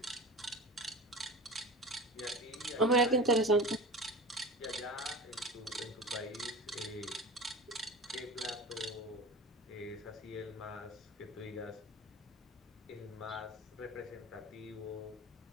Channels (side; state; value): both; normal; correlation 0.33